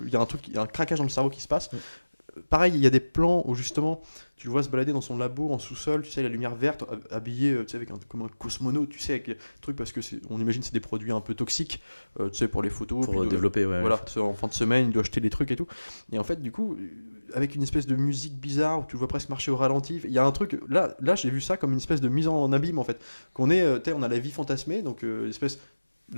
y a il y a un craquage dans le cerveau qui se passe. Ouais. Pareil, il y a des plans où justement, tu le vois se balader dans son labo en sous-sol, tu sais, la lumière verte, habillé, tu sais, comme un cosmonaute, tu sais, avec des trucs, parce que on imagine que c'est des produits un peu toxiques, tu sais, pour les photos. Pour développer, voilà, en fin de semaine, il doit acheter des trucs et tout. Et en fait, du coup, avec une espèce de musique bizarre, où tu le vois presque marcher au ralenti, il y a un truc, là j'ai vu ça comme une espèce de mise en abîme, en fait. Qu'on est, on a la vie fantasmée, donc l'espèce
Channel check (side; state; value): both; inverted; correlation -1.00